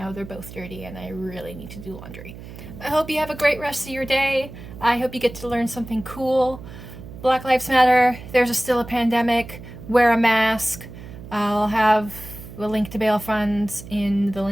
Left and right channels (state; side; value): noise; right; hum, 14 dB below the sound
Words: they're both dirty and I really need to do laundry. I hope you have a great rest of your day. I hope you get to learn something cool. Black Lives Matter. There's still a pandemic. Wear a mask. I'll have a link to bail funds in the